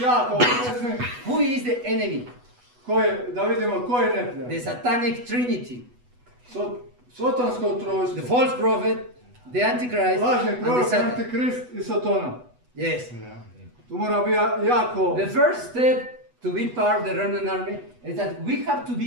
jako oprezni who is the enemy, da vidimo ko je neprijatelj. the satanic trinity, Sotonsko the trojstvo, false prophet, the antichrist, lažni and the prorok, Satan. antikrist i Sotona. Yes. Tu mora biti jako... The first step to be part of the remnant army is that we have to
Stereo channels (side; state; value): left; late; 8.1 ms